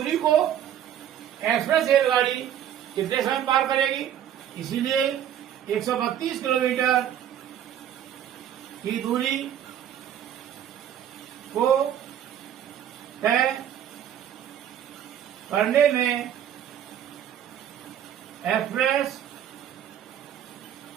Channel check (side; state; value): left; quieter; 10.2 dB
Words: को एक्सप्रेस रेलगाड़ी कितने समय पार करेगी, इसीलिए 132 किलोमीटर की दूरी को तय करने में एक्सप्रेस